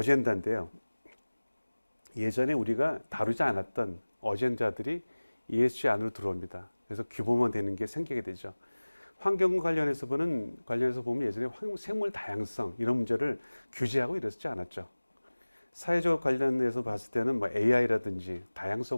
예전에 우리가 다루지 않았던 어젠다들이 ESG 안으로 들어옵니다. 그래서 규모만 되는 게 생기게 되죠. 환경 관련해서 보면 예전에 생물 다양성 이런 문제를 규제하고 이랬지 않았죠. 사회적 관련해서 봤을 때는 뭐 AI라든지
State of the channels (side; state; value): both; inverted; correlation -1.00